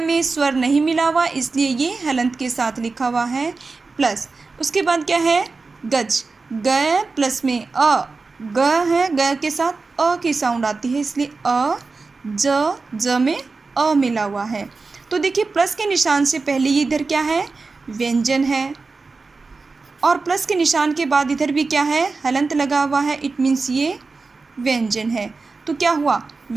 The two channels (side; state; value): left; quieter; 4.1 dB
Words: में स्वर नहीं मिला हुआ इसलिए ये हलंत के साथ लिखा हुआ है, प्लस उसके बाद क्या है, गज, ग प्लस में अ, ग है, ग के साथ अ की साउंड आती है, इसलिए अ, ज में अ मिला हुआ है। तो देखिए प्लस के निशान से पहले ये इधर क्या है, व्यंजन है, और प्लस के निशान के बाद इधर भी क्या है, हलंत लगा हुआ है। इट मीन्स ये व्यंजन है। तो क्या हुआ,